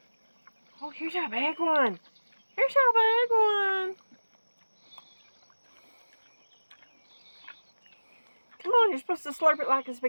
Oh, here's a big one. Here's a big one. Come on, you're supposed to slurp it like a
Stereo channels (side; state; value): both; inverted; correlation -1.00